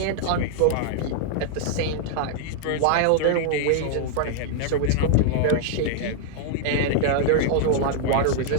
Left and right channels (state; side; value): different; both; correlation 0.00